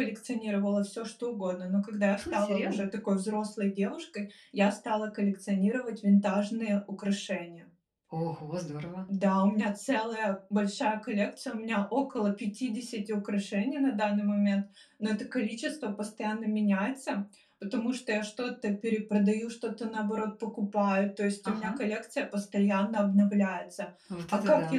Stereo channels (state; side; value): identical; both; correlation 1.00